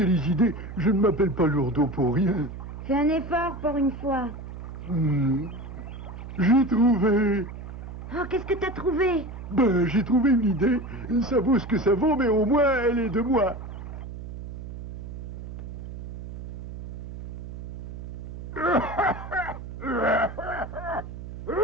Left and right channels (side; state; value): right; noise; hum, 10 dB below the sound